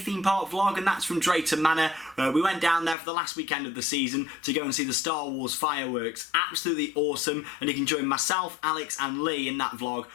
park vlog, and that's from Drayton Manor. We went down there for the last weekend of the season to go and see the Star Wars fireworks. Absolutely awesome, and you can join myself, Alex and Lee in that vlog.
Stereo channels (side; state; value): right; drops out; at 3.0 s